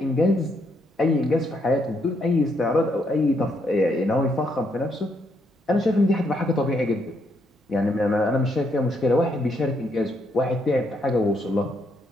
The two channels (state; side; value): normal; both; correlation 0.75